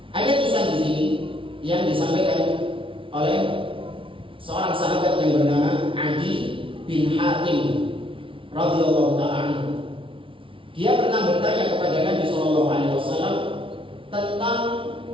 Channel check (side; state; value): left; late; 0.25 ms